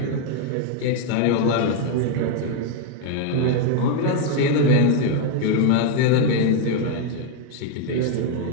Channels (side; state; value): both; different; correlation 0.01